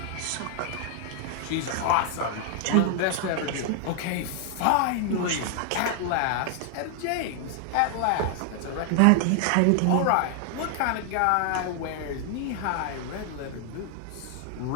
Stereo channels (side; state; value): both; different; correlation 0.00